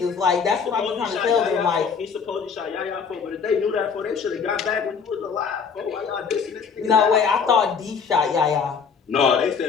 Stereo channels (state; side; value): quieter; right; 5.9 dB